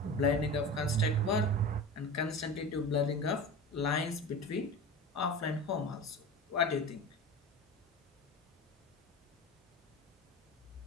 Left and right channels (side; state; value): both; normal; correlation 0.31